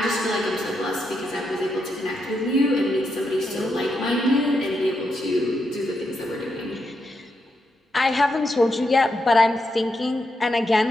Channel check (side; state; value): both; normal; correlation 0.83